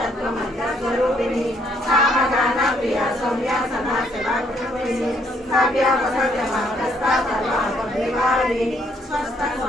సామగాన ప్రియా సౌమ్య సమాసభాకృపిణి సవ్యాపసవ్యమాగస్తా సర్వాపరివారిణి స్వస్థ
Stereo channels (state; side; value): normal; both; correlation 0.68